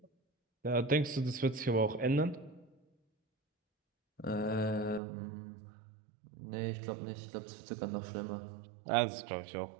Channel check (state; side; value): drops out; left; at 5.0 s